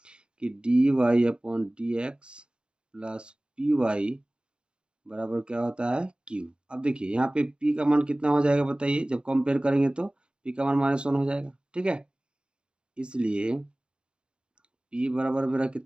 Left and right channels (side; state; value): left; late; 0.052 ms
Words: कि d Y upon D x plus p y बराबर क्या होता है, क्यू। अब देखिए यहाँ पे p का मान कितना हो जाएगा बताइए, जब कंपेयर करेंगे तो p का मान माइनस वन हो जाएगा। ठीक है, इसलिए p बराबर मेरा